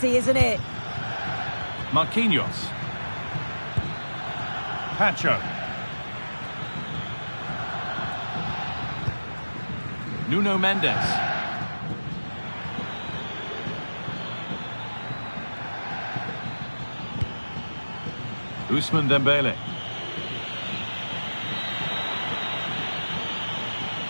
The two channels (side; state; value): both; inverted; correlation -1.00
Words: isn't it? Marquinhos. Pacho. Nuno Mendes. Ousmane Dembele.